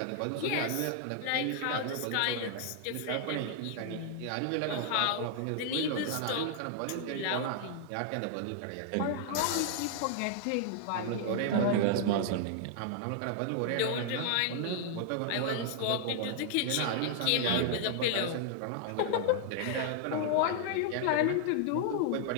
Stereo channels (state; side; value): different; both; correlation -0.01